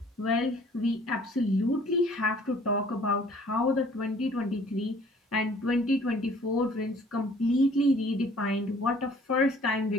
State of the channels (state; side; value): normal; both; correlation 0.55